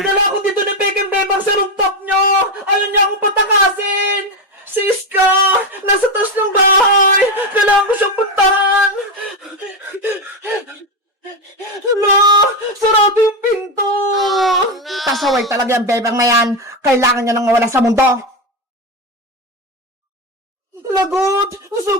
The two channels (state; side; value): normal; both; correlation 0.12